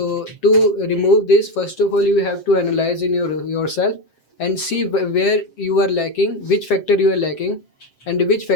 to remove this, first of all, you have to analyze in yourself and see where you are lacking, which factor you are lacking, and which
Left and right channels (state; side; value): late; right; 7.6 ms